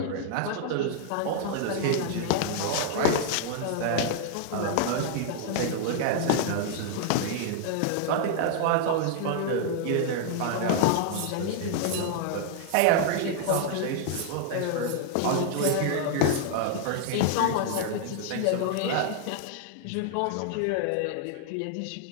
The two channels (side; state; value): both; different; correlation -0.01